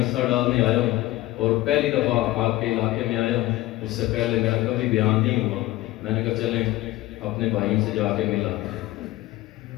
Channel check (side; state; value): right; quieter; 17.4 dB